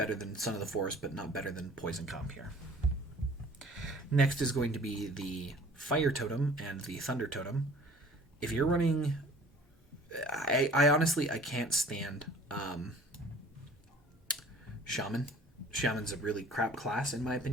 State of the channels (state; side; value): normal; both; correlation 0.49